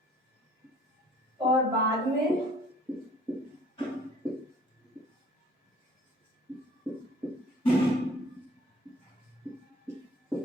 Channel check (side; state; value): both; normal; correlation 0.54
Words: और बाद में